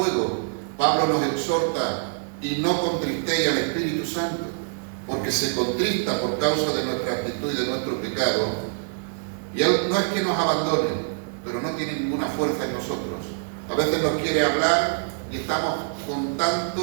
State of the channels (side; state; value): left; silent; digital silence